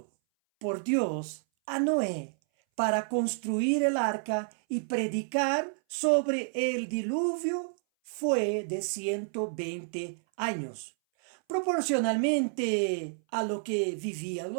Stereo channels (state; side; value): silent; left; 58 dB below the other